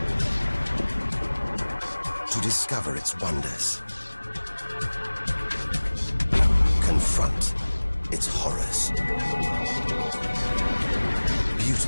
to discover its wonders, confront its horrors.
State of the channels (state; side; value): inverted; both; correlation -1.00